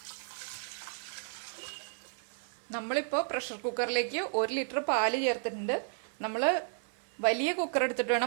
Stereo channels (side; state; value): left; silent; 56 dB below the other